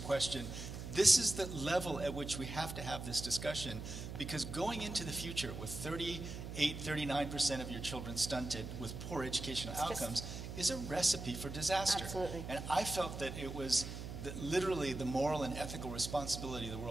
This is the level at which we have to have this discussion, because going into the future with 39% of your children stunted with poor educational outcomes is a recipe for disaster. Absolutely. And I felt that it was literally the moral and ethical responsibility of the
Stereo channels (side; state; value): right; noise; hum, 8 dB below the sound